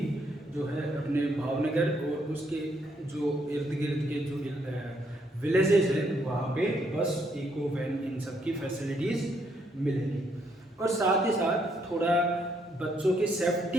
जो है अपने भावनगर और उसके जो इर्द गिर्द के जो विलेजेस हैं वहाँ पे बस, इको, वैन, इन सब की फैसिलिटीज़ मिलेंगी। और साथ ही साथ थोड़ा बच्चों की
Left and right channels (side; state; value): both; normal; correlation 0.73